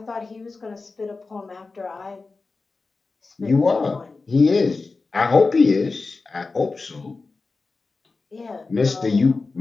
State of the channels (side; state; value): right; quieter; 3.9 dB